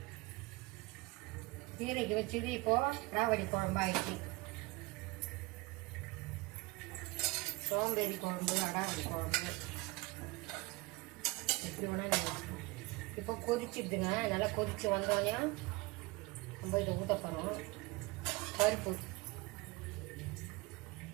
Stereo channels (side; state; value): left; quieter; 23.6 dB